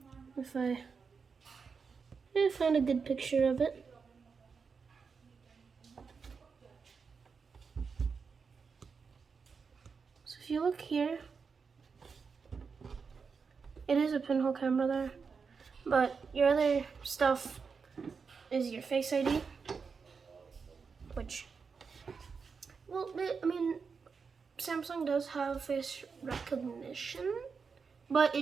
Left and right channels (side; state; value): left; quieter; 5.4 dB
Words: if I find a good picture of it. So if you look here, it is a pinhole camera there, but your other stuff is your Face ID, which, well, I mean, Samsung does have face recognition, but